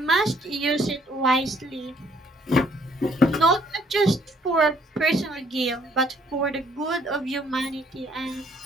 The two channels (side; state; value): both; normal; correlation 0.65